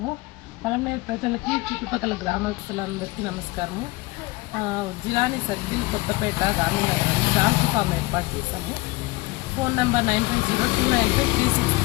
పలంనేరు ప్రజలకి చుట్టుపక్కల గ్రామస్తులందరికీ నమస్కారము. Jilani circle Kothapeta Gandhinagar donkey farm ఏర్పాటు చేశాము. Phone number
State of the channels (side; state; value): right; quieter; 21.9 dB